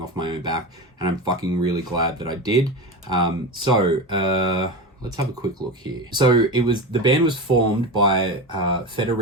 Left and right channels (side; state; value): both; normal; correlation 0.23